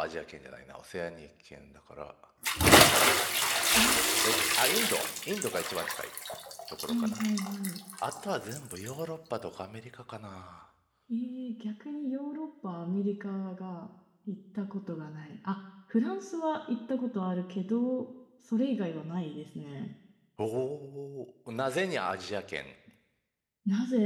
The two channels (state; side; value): identical; both; correlation 1.00